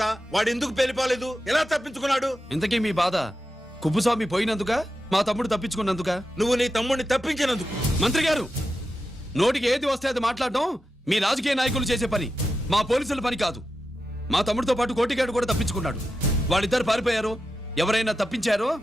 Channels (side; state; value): both; normal; correlation 0.90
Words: వాడు ఎందుకు పెళ్లిపోలేదు? ఎలా తప్పించుకున్నాడు? ఇంతకీ మీ బాధ కుప్పుస్వామి పోయినందుక, మా తమ్ముడు తప్పించుకున్నందుక? నువ్వు నీ తమ్ముడిని తప్పించినందుకు. మంత్రి గారు, నోటికి ఏది వస్తే అది మాట్లాడడం మీ రాజకీయ నాయకులు చేసే పని, మా పోలీసుల పని కాదు. మా తమ్ముడితో పాటు కోటిగాడు కూడా తప్పించుకున్నాడు. వాళ్ళిద్దరు పారిపోయారు. ఎవరైనా తప్పించారో